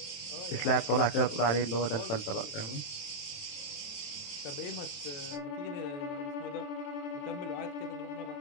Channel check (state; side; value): late; right; 27 ms